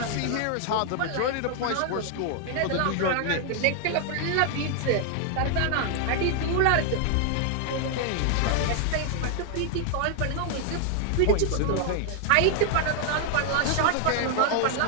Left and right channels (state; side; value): different; both; correlation 0.00